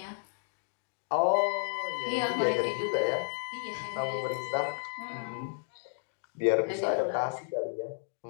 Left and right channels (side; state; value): right; silent; digital silence